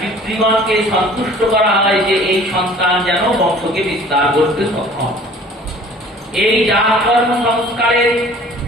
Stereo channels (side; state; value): both; normal; correlation 0.50